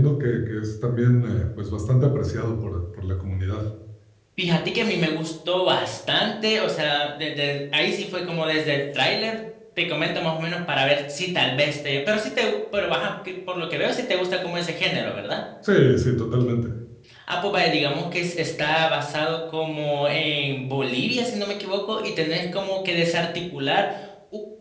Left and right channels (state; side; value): identical; both; correlation 1.00